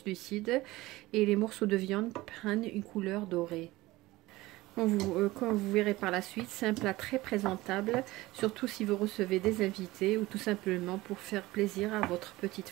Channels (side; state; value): left; quieter; 19.1 dB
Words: et les morceaux de viande prennent une couleur dorée. Comme vous verrez par la suite, c'est un plat très présentable, surtout si vous recevez des invités ou tout simplement pour faire plaisir à votre petite